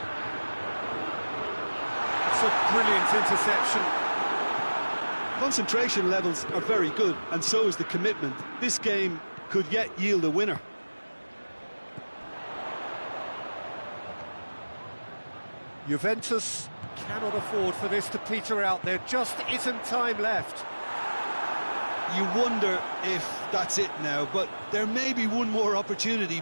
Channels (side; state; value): both; inverted; correlation -1.00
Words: It's a brilliant interception. Concentration levels are very good, and so is the commitment. This game could yet yield a winner. Juventus cannot afford for this to peter out. There just isn't time left. You wonder if that's it now, but there may be one more opportunity,